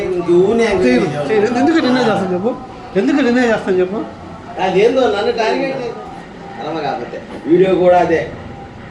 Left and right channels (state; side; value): identical; both; correlation 1.00